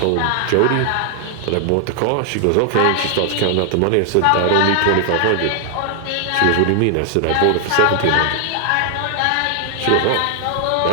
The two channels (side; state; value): both; different; correlation 0.00